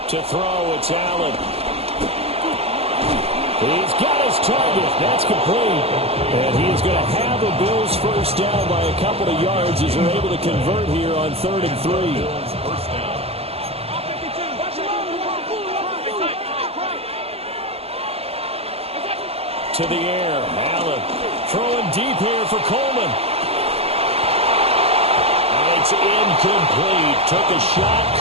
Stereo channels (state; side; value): late; left; 0.29 ms